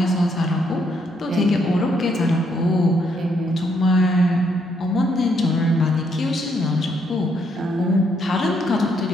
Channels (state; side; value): normal; both; correlation 0.74